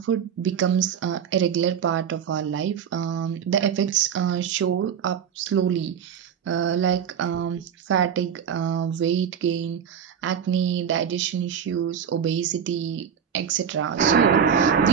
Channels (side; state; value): left; quieter; 7.9 dB